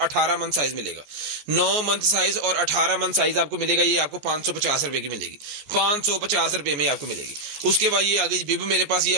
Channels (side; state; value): left; late; 14 ms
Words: 18 मंथ साइज मिलेगा, 9 मंथ साइज और 18 मंथ साइज आपको मिलेगा। ये आपको 550 रुपए की मिलेगी, 550 रुपए में आपको मिलेगी। उसके बाद ये आ गई बिब मेरे पास, ये